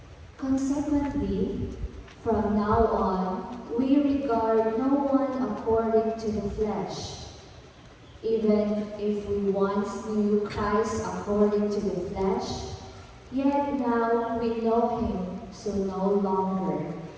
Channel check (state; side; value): identical; both; correlation 1.00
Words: Consequently, from now on, we regard no one according to the flesh. Even if we once knew Christ according to the flesh, yet now we know him so no longer.